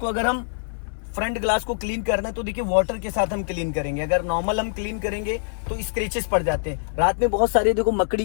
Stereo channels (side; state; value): right; silent; 63 dB below the other